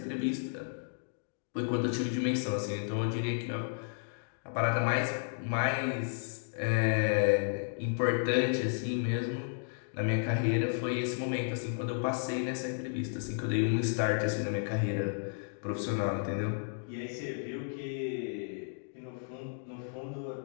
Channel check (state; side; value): silent; right; digital silence